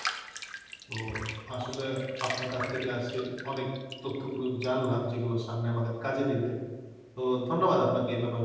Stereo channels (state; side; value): identical; both; correlation 1.00